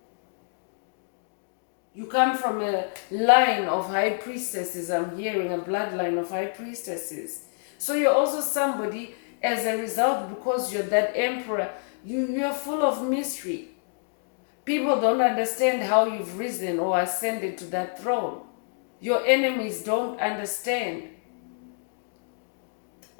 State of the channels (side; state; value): right; silent; digital silence